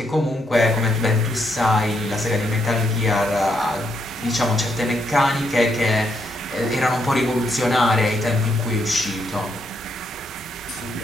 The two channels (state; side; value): normal; both; correlation 0.77